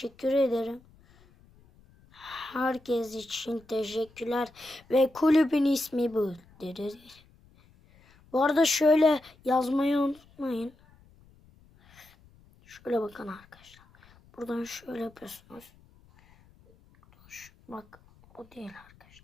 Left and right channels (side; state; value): left; noise; rumble, 28 dB below the sound